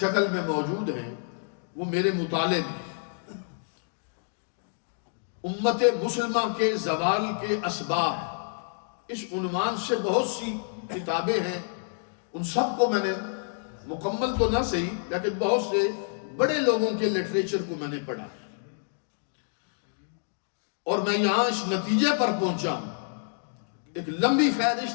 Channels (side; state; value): right; silent; digital silence